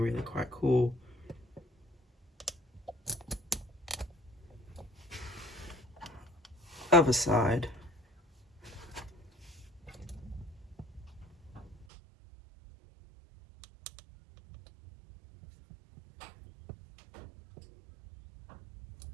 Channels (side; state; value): left; drops out; at 11.9 s